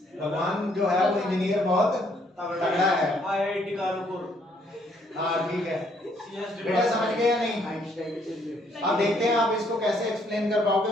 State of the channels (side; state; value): both; normal; correlation 0.67